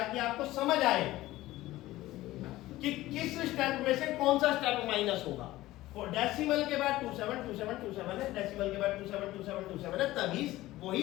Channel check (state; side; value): quieter; right; 16.8 dB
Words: आपको समझ आए कि किस स्टेप में से कौन सा स्टेप माइनस होगा। और डेसिमल के बाद 272727 है, डेसिमल के बाद 272727 है, तभी वही